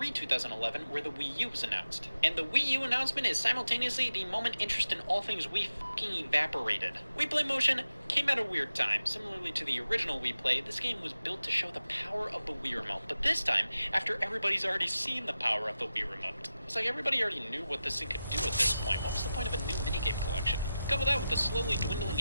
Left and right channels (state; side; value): inverted; both; correlation -0.92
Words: 2011, where the Wii U was announced. And the Wii U announcement is simultaneously the moment interest in all things Wii fucking evaporated. We Play Motion came at a weird time. Similarly to the original Wii Play, this game was built to show the power of the Wii Remote. But this time, after everybody's already seen the power of the Wii Remote. It's like everybody already knew what this thing could do at this point. What was the point of a new minigame collection? Couple that with the slowly dwindling